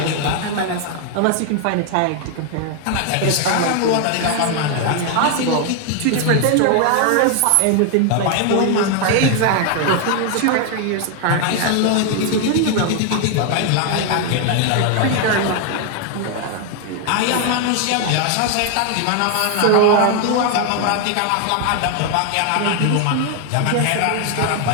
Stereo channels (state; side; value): different; both; correlation 0.00